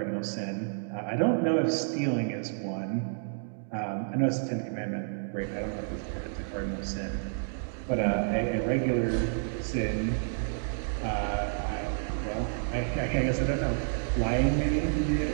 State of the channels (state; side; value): silent; left; digital silence